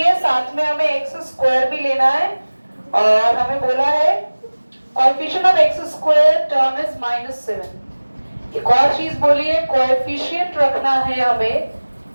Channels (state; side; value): inverted; both; correlation -1.00